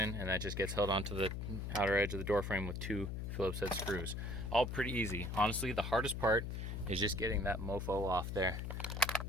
and that just gets held onto the outer edge of the door frame with two Phillips head screws. All pretty easy. Honestly, the hardest part is just getting that mofo off there.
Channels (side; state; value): left; noise; hum, 4 dB below the sound